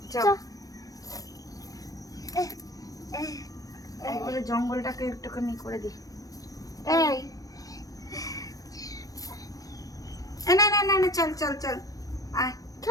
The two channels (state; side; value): late; right; 0.17 ms